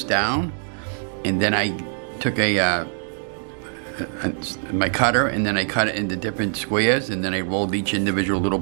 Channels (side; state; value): left; silent; 63 dB below the other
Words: down, and then I took my cutter, and then I cut it into different squares, and then I rolled each individual little